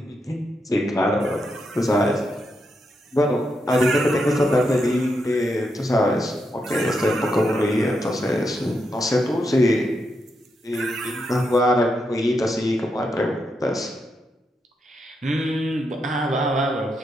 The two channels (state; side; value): normal; both; correlation 0.83